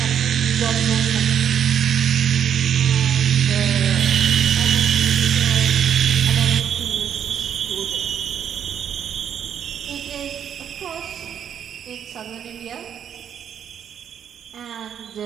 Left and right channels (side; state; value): left; quieter; 8.8 dB